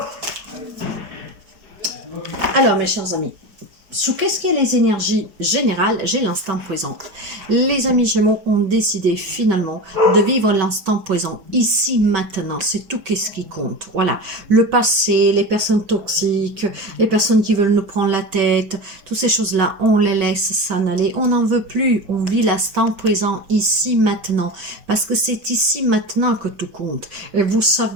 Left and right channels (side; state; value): left; late; 5.2 ms